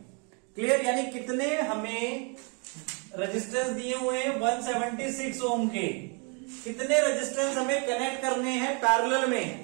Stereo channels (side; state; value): left; quieter; 35.6 dB